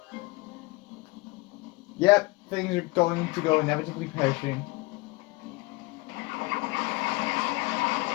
Yep, things are going to go inevitably pear-shaped.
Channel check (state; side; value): quieter; right; 23.5 dB